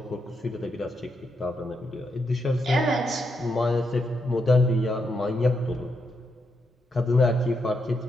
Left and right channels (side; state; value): both; normal; correlation 0.81